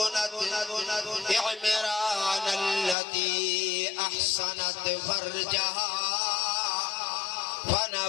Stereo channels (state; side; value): drops out; right; at 3.0 s